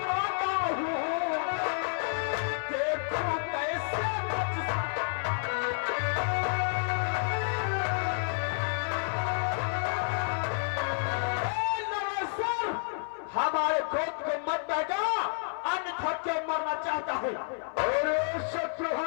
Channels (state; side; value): silent; right; 58 dB below the other